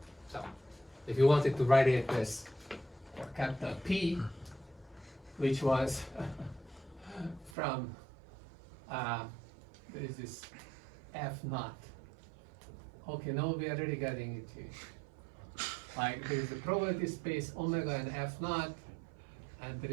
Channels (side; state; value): left; drops out; at 7.5 s